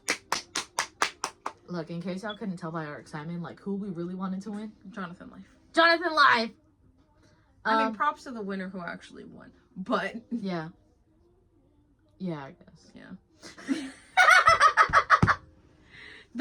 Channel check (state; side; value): identical; both; correlation 1.00